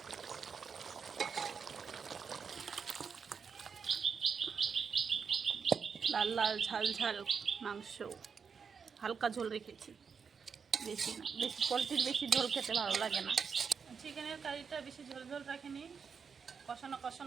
লাল লাল ঝাল ঝাল মাংস, হালকা ঝোল রেখেছি, বেশি না। বেশি পোলট্রির বেশি ঝোল খেতে ভালো লাগে না। চিকেনের কারিটা বেশি ঝোল ঝোল রাখিনি, কষানো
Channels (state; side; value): quieter; left; 6.1 dB